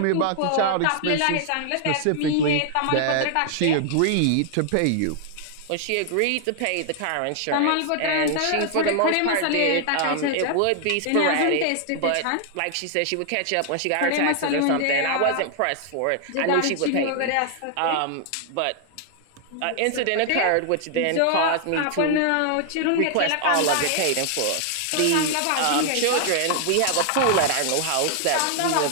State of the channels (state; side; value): different; both; correlation 0.00